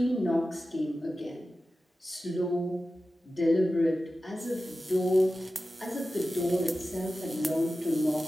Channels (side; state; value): both; normal; correlation 0.94